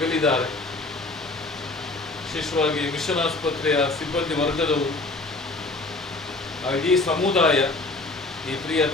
ವಿಶೇಷವಾಗಿ ಮಿಷನ್ ಆಸ್ಪತ್ರೆಯ ಸಿಬ್ಬಂದಿ ವರ್ಗದವರು, ಇಡೀ ಸಮುದಾಯ ಈ ಪ್ರಿಯ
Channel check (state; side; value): quieter; right; 3.2 dB